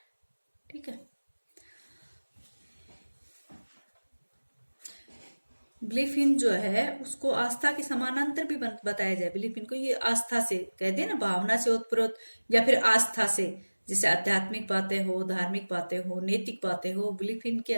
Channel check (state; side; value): inverted; both; correlation -1.00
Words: ठीक है। बिलीफ इन जो है उसको आस्था के समानांतर भी बताया जाए। बिलीफ इन को ये आस्था से कहते हैं ना, भावना से ओतप्रोत या फिर आस्था से, जैसे आध्यात्मिक बातें हो, धार्मिक बातें हो, नैतिक बातें हो, बिलीफ इन के